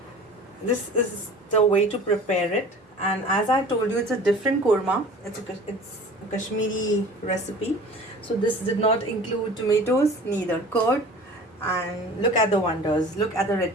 This is the way to prepare it, and as I told you, it's a different korma. It's a Kashmiri recipe, so this did not include tomatoes, neither curd. And look at the wonders, look at the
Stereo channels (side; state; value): both; normal; correlation 0.43